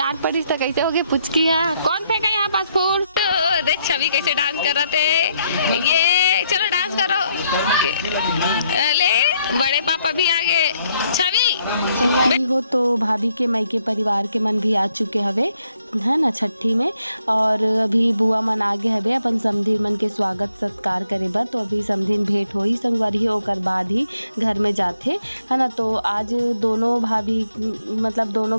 पड़ी तो कैसे होगी पुचकी है कौन फेंका यहाँ पास फूल। तो देख छवि कैसे डांस कर रहा थे, ये चलो डांस करो ले बड़े पापा भी आगे। छवि हो तो भाभी के मायके परिवार के मन भी आ चुके हवे है ना छठी में, और अभी बुआ मन आगे हवे अपन समधीन मन के स्वागत सत्कार करे बर। तो अभी समधीन भेंट होई संगवारी ओकर बाद ही घर में जाते है ना। तो आज दोनों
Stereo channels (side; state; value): both; inverted; correlation -0.75